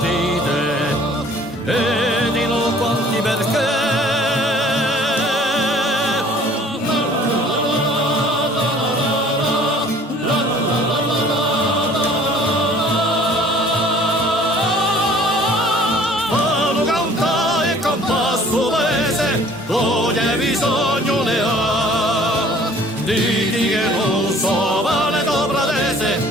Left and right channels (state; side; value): normal; both; correlation 0.52